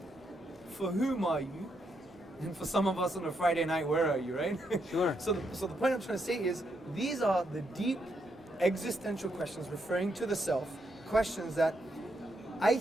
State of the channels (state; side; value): normal; both; correlation 0.79